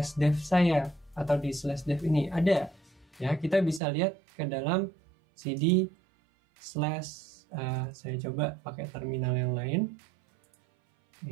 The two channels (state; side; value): drops out; left; at 3.8 s